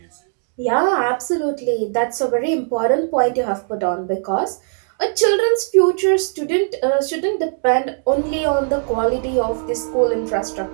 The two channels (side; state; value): left; silent; digital silence